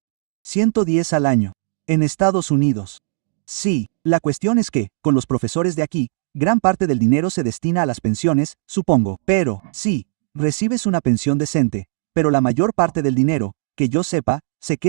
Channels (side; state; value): left; silent; digital silence